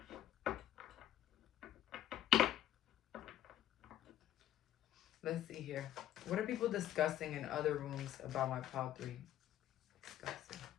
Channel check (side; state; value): right; quieter; 12.3 dB